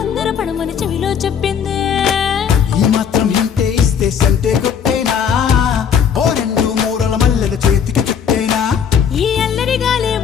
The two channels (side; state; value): right; quieter; 7.6 dB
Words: పడమని చెవిలో చెప్పిందే ఈ మాత్రం ఇంటే ఇస్తే సంటే కొట్టేనా ఓ రెండు మూరల మల్లెల చేతికి చుట్టేనా ఈ అల్లరి